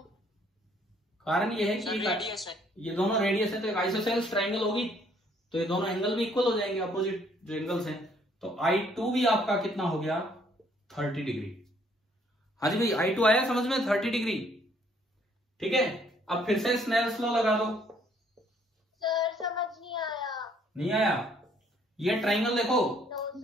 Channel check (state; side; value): normal; both; correlation 0.64